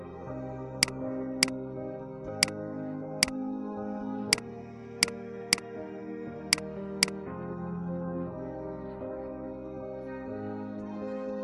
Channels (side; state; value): both; identical; correlation 1.00